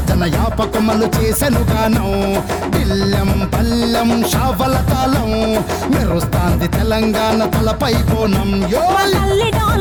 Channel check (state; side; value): identical; both; correlation 1.00